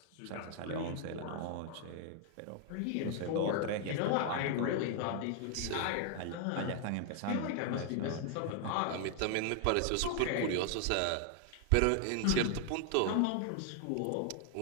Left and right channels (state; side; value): different; both; correlation 0.00